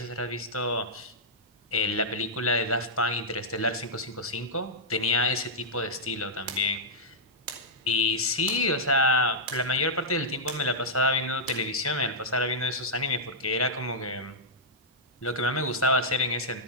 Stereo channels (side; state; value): both; normal; correlation -0.09